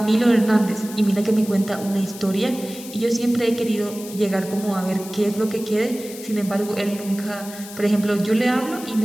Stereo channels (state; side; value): noise; left; hiss, 14 dB below the sound